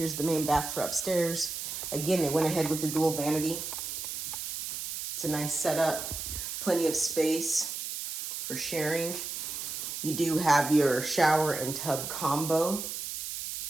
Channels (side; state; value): right; noise; hiss, 5 dB below the sound